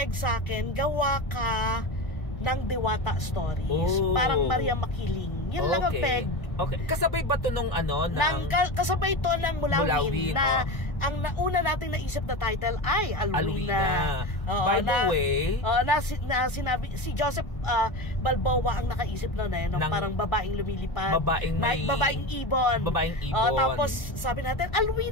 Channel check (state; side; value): late; right; 1.4 ms